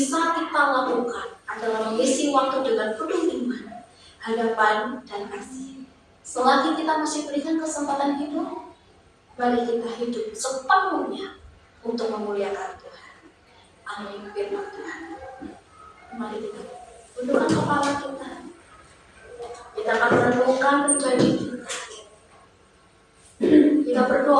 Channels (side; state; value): both; identical; correlation 1.00